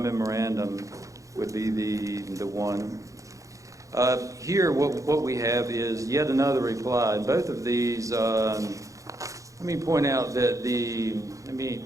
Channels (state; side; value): late; left; 0.16 ms